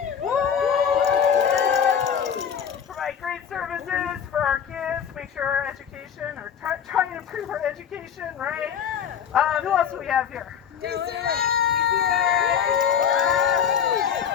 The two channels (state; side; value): quieter; right; 8.0 dB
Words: Woo! Provide great services for our kids, make sure our education, or try and improve our education, right? Who else do we have here?